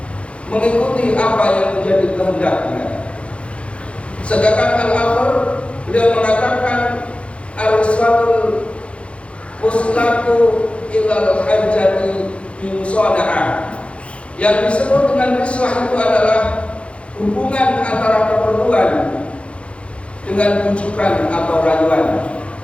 mengikuti apa yang menjadi kehendaknya. Sedangkan Al-Athar beliau mengatakan al-riswatul muslatu ilal hajjati bimusoda'ah. Yang disebut dengan riswah itu adalah hubungan antara keperluan dengan bujukan atau rayuan.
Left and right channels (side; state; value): right; late; 0.060 ms